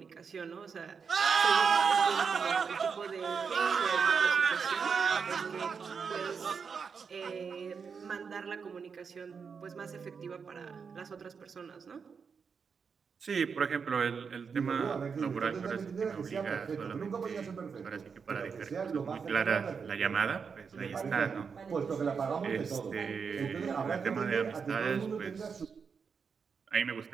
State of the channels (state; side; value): quieter; left; 5.9 dB